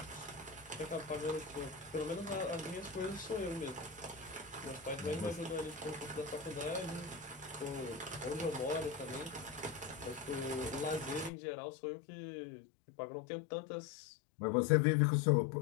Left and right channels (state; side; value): drops out; right; at 11.3 s